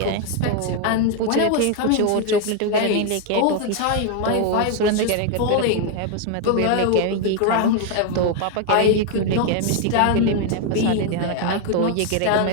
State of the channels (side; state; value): both; different; correlation 0.01